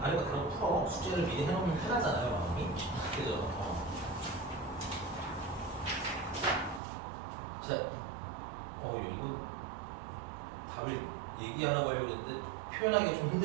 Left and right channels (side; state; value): left; drops out; at 6.8 s